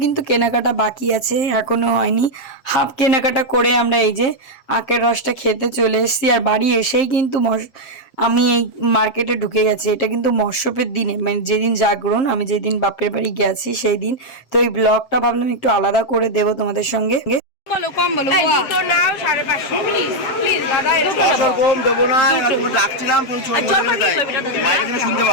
কিন্তু কেনাকাটা বাকি আছে, এখনও হয়নি। হাফ কেনাকাটা করে আমরা এই যে আখের রসটা খেতে চলে এসেছি। আর বাড়ি এসেই কিন্তু আমি এই মার্কেটে ঢুকে গেছি। এটা কিন্তু মৎস্যপের দিনে, মানে যেদিন জাগরণ, আমি যেদিন বাপের বাড়ি গেছি সেই দিন। তো এই ব্লগটা ভাবলাম একটু আলাদা করে দেবো তোমাদের সঙ্গে। বলো কম বলো। দুটো নাও 550 প্লিজ প্লিজ দাদা কম দেবো না, তুমি ডাকছিলাম তুমি ছোট করে দেয় মাইকে তুমি শুনতে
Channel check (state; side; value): late; right; 7.5 ms